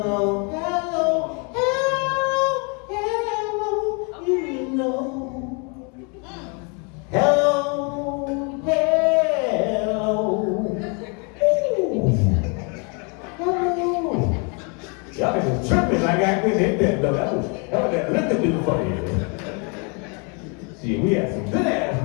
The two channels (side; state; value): right; quieter; 34.9 dB